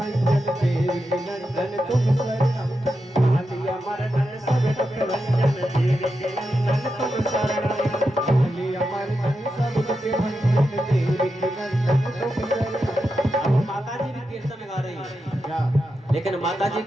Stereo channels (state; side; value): normal; both; correlation 0.88